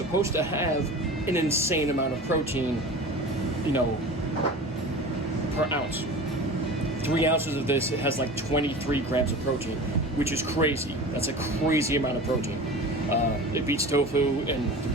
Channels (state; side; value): normal; both; correlation 0.35